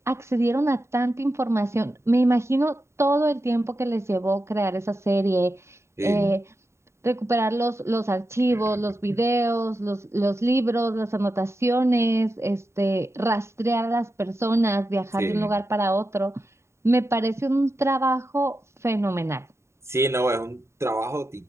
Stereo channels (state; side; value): late; left; 0.13 ms